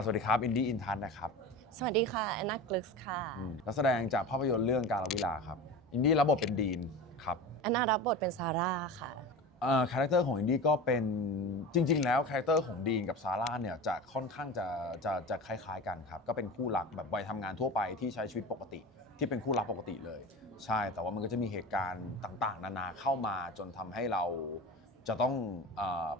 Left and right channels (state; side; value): normal; both; correlation 0.30